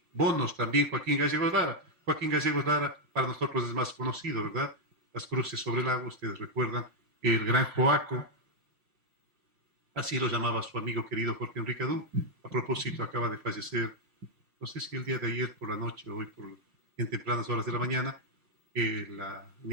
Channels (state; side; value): late; left; 5.7 ms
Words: bonos también, Joaquín Gallegos Lara. Joaquín Gallegos Lara para nosotros es más conocido, ¿verdad? Las cruces sobre el agua, ustedes recuerdan, el gran Joaco, así lo llamaba su amigo querido Jorge Enrique Adú. A propósito, acaba de fallecer, no sé si el día de ayer por la noche o hoy en tempranas horas de la mañana, la